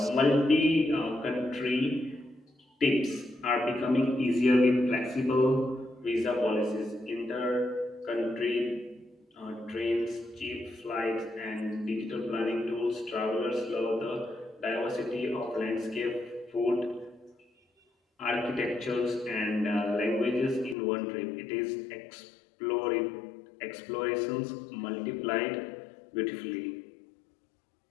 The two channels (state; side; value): drops out; right; at 20.8 s